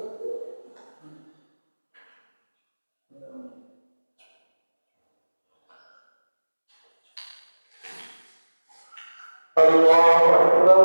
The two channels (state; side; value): inverted; both; correlation -1.00